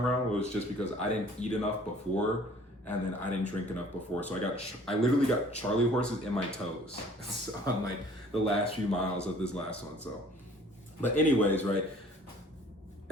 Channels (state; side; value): normal; both; correlation 0.53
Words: around was just because I didn't eat enough before, and then I didn't drink enough before. So I literally got Charlie horses in my toes on like the last few miles of this last one. So, but anyways, right?